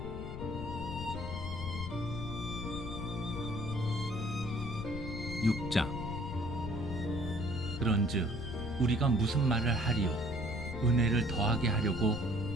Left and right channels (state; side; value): noise; left; rumble, 7 dB below the sound